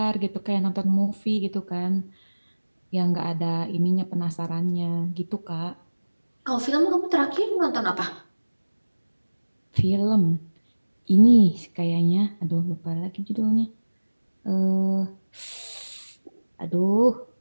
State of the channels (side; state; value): both; inverted; correlation -1.00